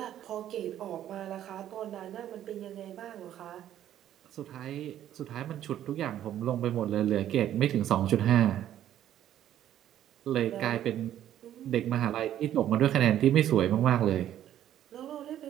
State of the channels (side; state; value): left; quieter; 11.5 dB